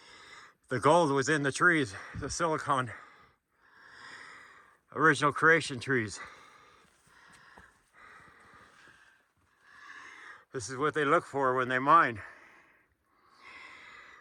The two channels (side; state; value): both; identical; correlation 1.00